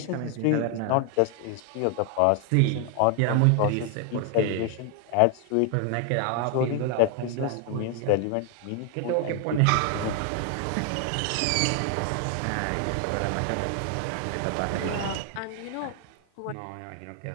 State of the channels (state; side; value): different; both; correlation 0.00